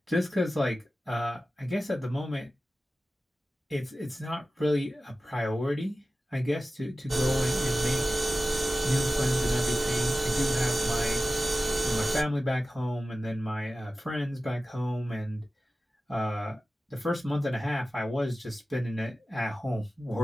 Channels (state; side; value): normal; both; correlation 0.95